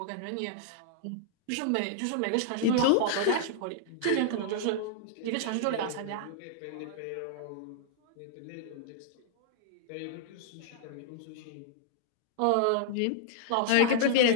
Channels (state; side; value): different; both; correlation -0.01